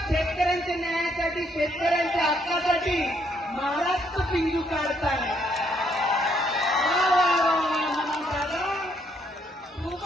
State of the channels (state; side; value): normal; both; correlation 0.71